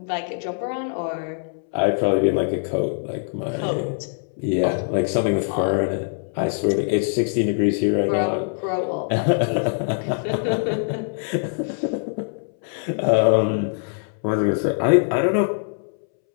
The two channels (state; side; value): silent; right; 63 dB below the other